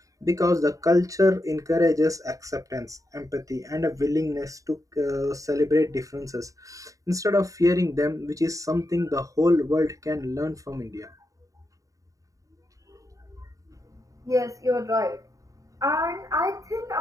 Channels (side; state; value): left; late; 0.16 ms